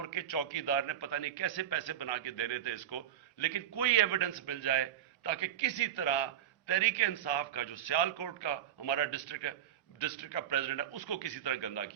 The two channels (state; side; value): quieter; left; 10.6 dB